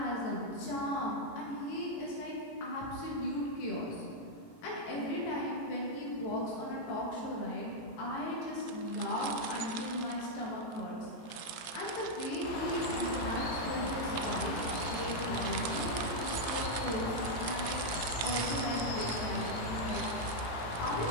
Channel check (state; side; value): late; right; 18 ms